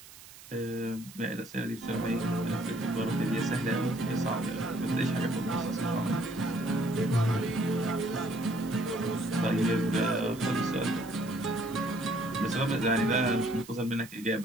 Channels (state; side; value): noise; right; hiss, 19 dB below the sound